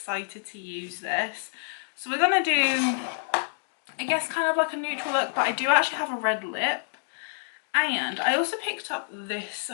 to use this. So we're gonna do, I guess, kind of like a neutral look, but I do actually have a red lip. And I also picked up this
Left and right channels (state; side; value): silent; right; digital silence